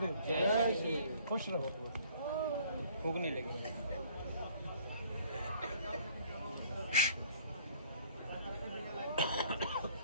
जय श्री। खुश रहो। भूख नहीं लगी।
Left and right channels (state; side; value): inverted; both; correlation -0.57